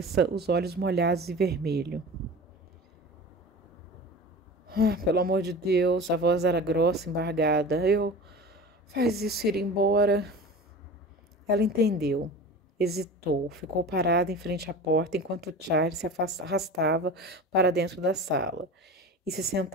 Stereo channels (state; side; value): normal; both; correlation 0.34